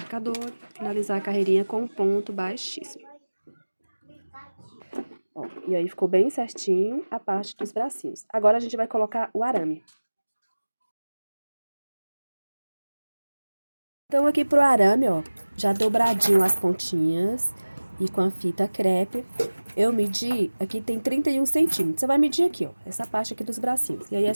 finalizar a carreirinha com um ponto baixíssimo. Ó, e aí ficou bem certinho a parte dos bracinhos. Agora a gente vai colocar o arame. Então aqui pro arame, ó, já dobradinho as pontinhas e com a fita crepe, eu medi, aqui tem 31 centímetros. Você vai medir aqui, ó, essa parte aqui dos bracinhos. E aí é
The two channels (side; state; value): both; inverted; correlation -1.00